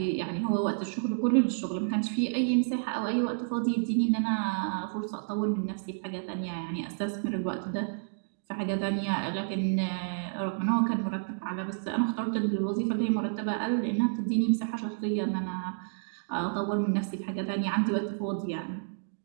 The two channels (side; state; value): left; silent; digital silence